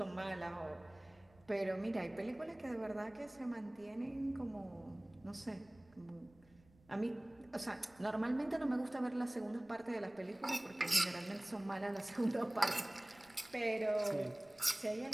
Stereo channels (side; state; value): right; noise; rumble, 28 dB below the sound